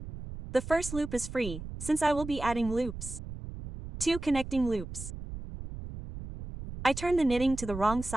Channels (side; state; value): right; noise; rumble, 10 dB below the sound